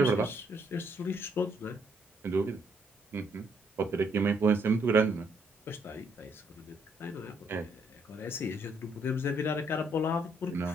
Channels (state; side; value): normal; both; correlation 0.71